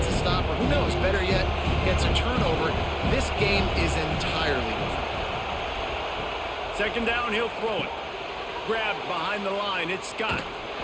a stop, or who knows, better yet, gets a turnover. This game is entirely different. Second down, he'll throw it. Grabbed behind the line, it's Scott.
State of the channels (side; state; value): both; identical; correlation 1.00